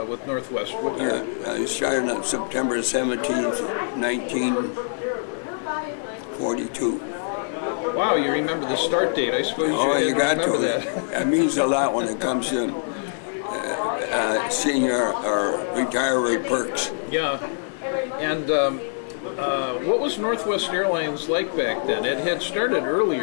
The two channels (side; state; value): right; silent; 57 dB below the other